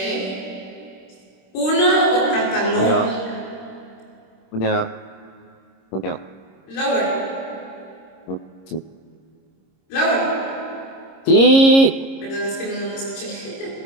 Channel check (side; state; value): right; late; 26 ms